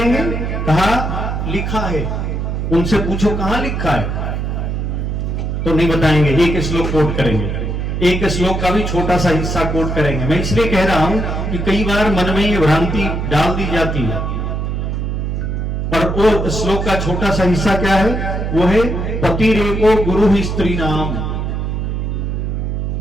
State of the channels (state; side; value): noise; right; hum, 2 dB below the sound